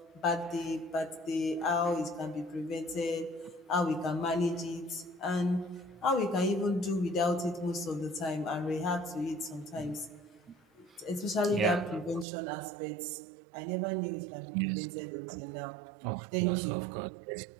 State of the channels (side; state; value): left; drops out; at 12.2 s